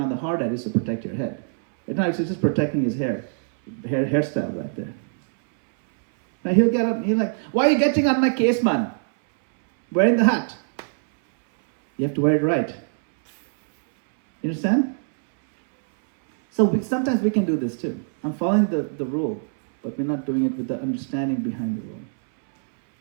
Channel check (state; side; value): silent; left; 63 dB below the other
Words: on the hard hat is to protect your head. It's not, it's just protecting his hairstyle right there. Now he'll get up, he's like, why are you getting on my case, man? Wearing the hat. You have to wear it right. You understand? So sometimes we can do this too. I'm following the rule, but we're not doing it with the understanding behind the rule.